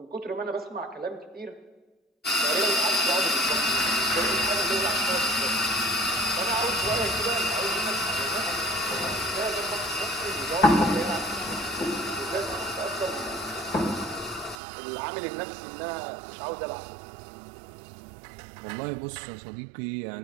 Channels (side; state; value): left; drops out; at 14.6 s